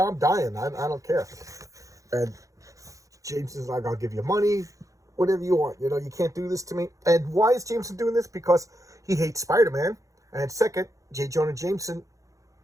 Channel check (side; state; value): left; late; 0.16 ms